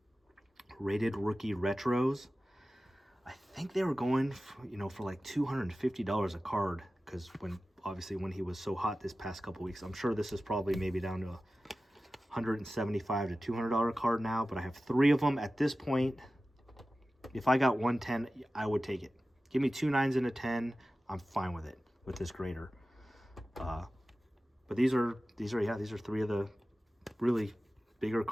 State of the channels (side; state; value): both; normal; correlation 0.95